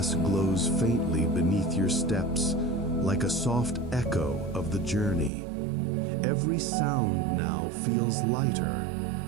glows faintly beneath your steps, like a soft echo of the journey. Every sound now feels lighter,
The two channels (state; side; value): drops out; left; at 5.3 s